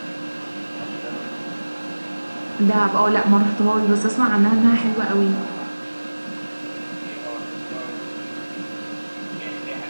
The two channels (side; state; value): both; inverted; correlation -1.00